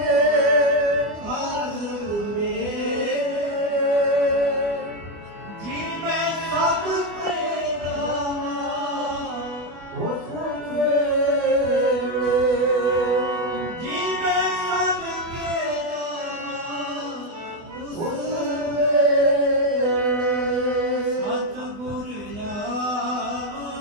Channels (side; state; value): left; late; 24 ms